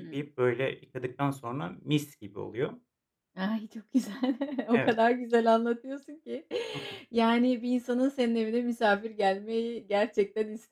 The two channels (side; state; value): both; identical; correlation 1.00